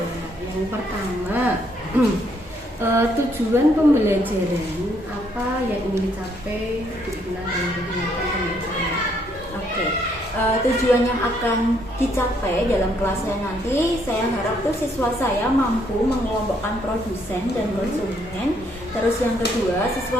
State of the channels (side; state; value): both; normal; correlation 0.70